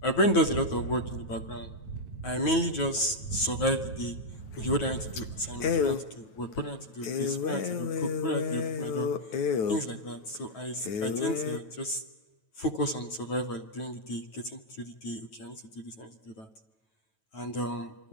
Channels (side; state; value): right; late; 9.2 ms